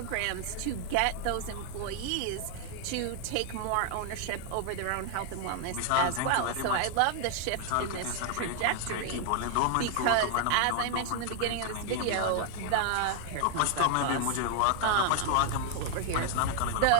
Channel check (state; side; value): different; both; correlation 0.00